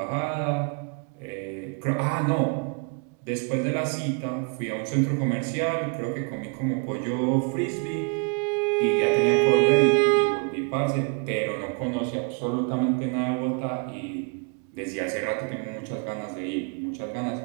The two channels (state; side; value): quieter; left; 35.8 dB